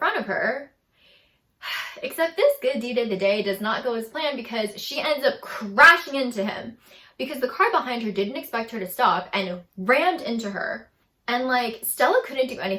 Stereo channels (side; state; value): both; identical; correlation 1.00